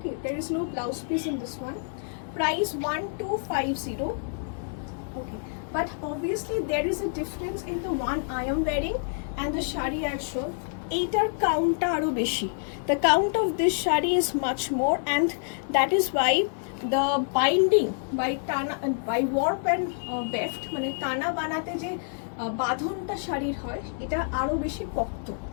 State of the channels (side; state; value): right; silent; digital silence